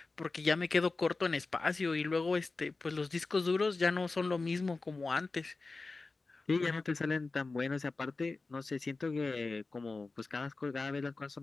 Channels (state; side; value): quieter; right; 3.7 dB